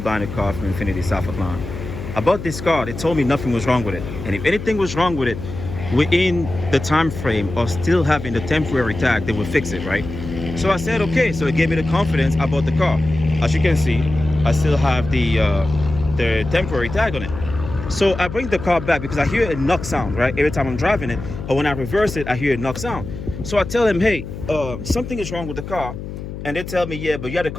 a car from Infiniti South Atlanta. I bought this car, they told me nothing was wrong with it. And if anything was wrong with it, within the time frame of still having the temporary tag, they would fix it, right? So I said, okay. So it gave me the confidence. I bought the car. As you can see, I still have the temporary tag on it. So I bring the car back because I hear a knock sound, right? Every time I'm driving it, or when I reverse it, I hear a knock sound. So I tell him, hey, something is wrong with the car. And they tell me, yeah, but you had the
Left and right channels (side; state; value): left; noise; hum, 9 dB below the sound